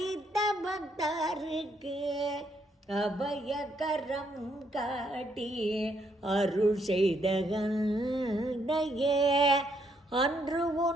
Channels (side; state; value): both; normal; correlation 0.73